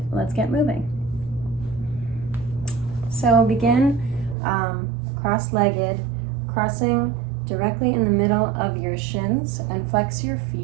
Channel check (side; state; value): left; drops out; at 4.4 s